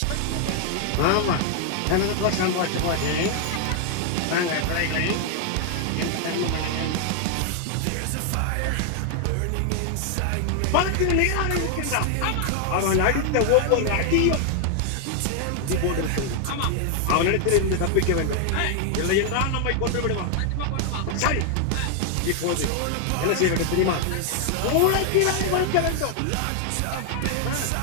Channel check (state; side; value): different; both; correlation 0.00